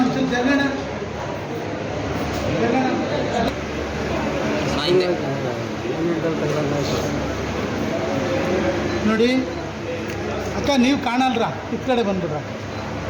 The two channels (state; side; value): identical; both; correlation 1.00